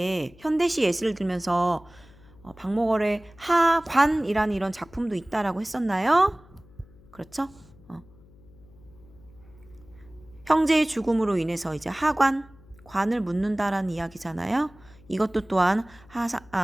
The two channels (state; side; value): noise; left; hum, 25 dB below the sound